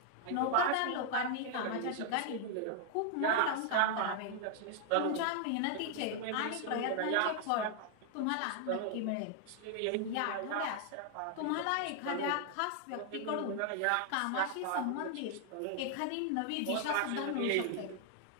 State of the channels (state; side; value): different; both; correlation 0.00